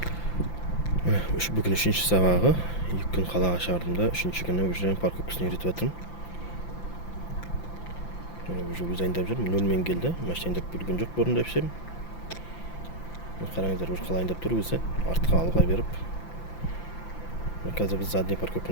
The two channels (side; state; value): right; late; 5.9 ms